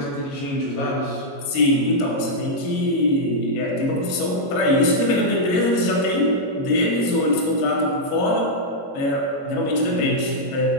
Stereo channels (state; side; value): late; right; 22 ms